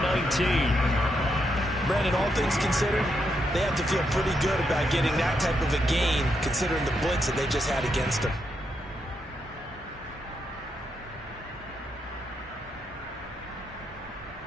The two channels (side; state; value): both; normal; correlation 0.80